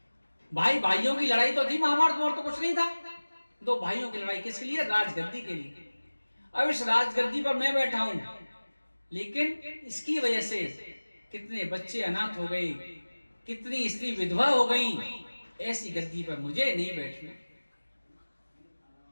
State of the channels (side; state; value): both; inverted; correlation -1.00